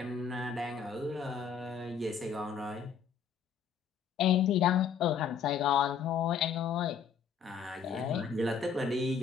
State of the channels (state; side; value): quieter; right; 6.8 dB